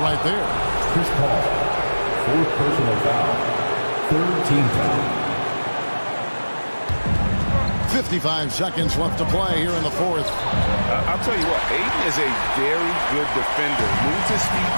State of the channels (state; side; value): inverted; both; correlation -1.00